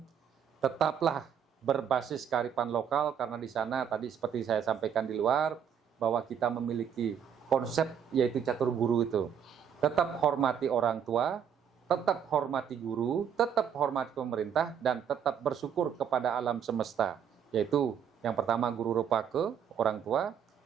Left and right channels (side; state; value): left; quieter; 8.2 dB